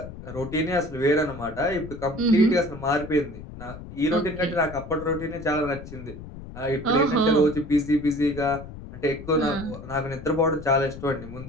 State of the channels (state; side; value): noise; left; rumble, 13 dB below the sound